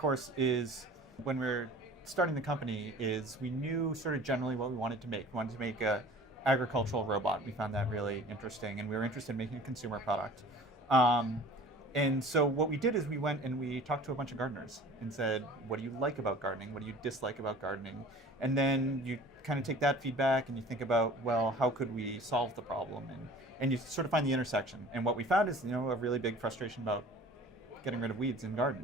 is when we were starting the company, is we knew sort of generally what we wanted to make. We wanted to make a agricultural robot. We found that really interesting, and we were interested in making a consumer product. And so what we did is we went and we talked to a bunch of gardeners and said, what do you like about gardening? What do you dislike about gardening? And then you kind of take that feedback and you think about, well, how could we solve the problem? And you sort of find the intersection. And what we found is, a really big frustration about getting rid of weeds in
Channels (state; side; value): normal; both; correlation 0.45